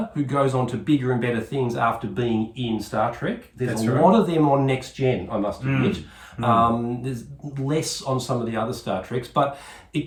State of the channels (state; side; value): identical; both; correlation 1.00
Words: who goes on to bigger and better things after being in Star Trek. There's a lot of them on Next Gen, I must admit. There's less on some of the other Star Treks, but